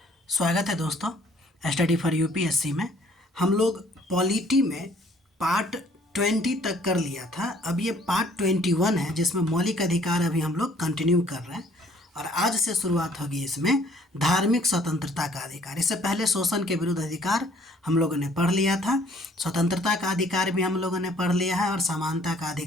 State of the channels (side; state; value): both; normal; correlation 0.59